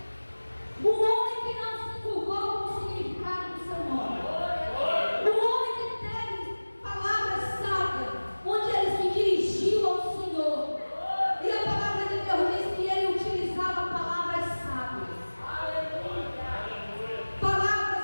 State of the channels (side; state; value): both; inverted; correlation -1.00